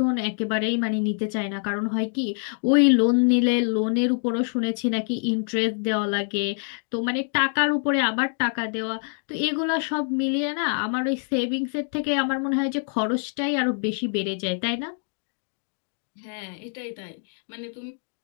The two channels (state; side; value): silent; right; 57 dB below the other